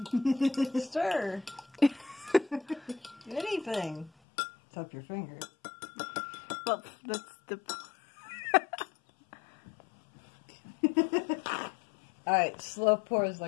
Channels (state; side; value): drops out; right; at 4.1 s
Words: Stir. Anything. Tap your finger. Well, that's the. Alright, slow pours